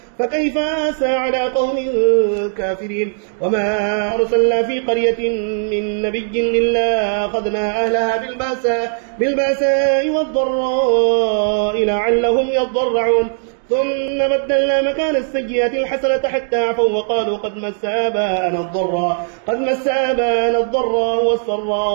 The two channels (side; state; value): left; silent; digital silence